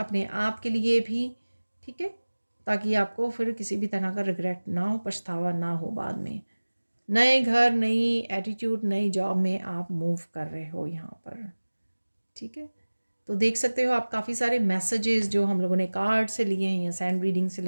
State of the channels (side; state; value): both; inverted; correlation -1.00